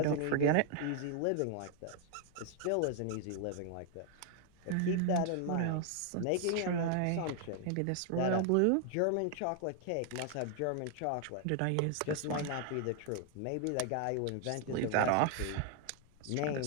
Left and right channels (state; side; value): different; both; correlation 0.00